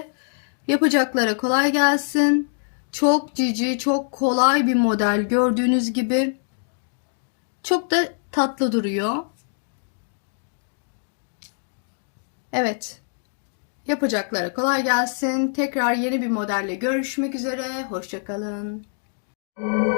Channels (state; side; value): silent; right; digital silence